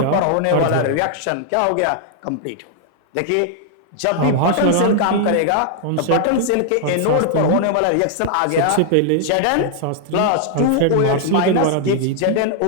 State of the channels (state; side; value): different; both; correlation -0.01